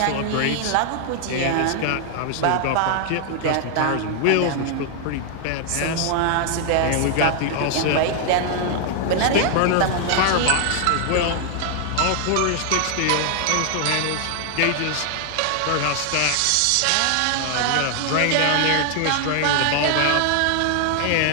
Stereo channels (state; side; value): different; both; correlation 0.00